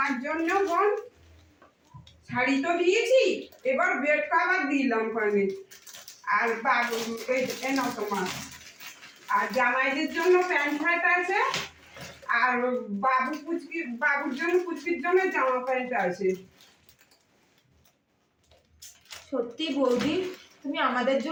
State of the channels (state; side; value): identical; both; correlation 1.00